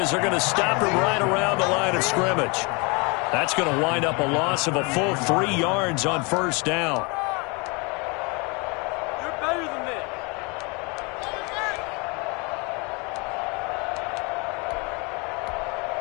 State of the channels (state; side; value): quieter; right; 30.0 dB